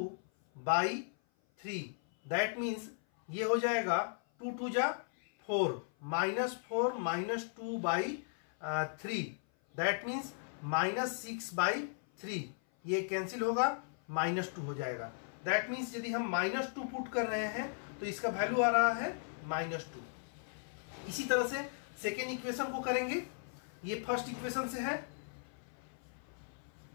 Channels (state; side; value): silent; right; 53 dB below the other